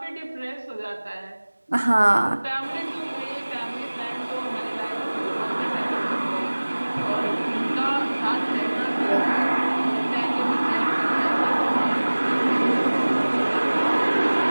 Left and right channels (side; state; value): both; inverted; correlation -1.00